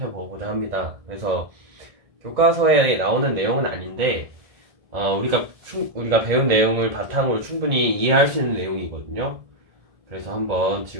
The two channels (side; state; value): left; late; 1.7 ms